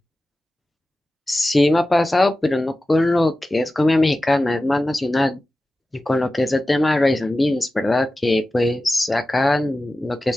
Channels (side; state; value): both; normal; correlation 0.95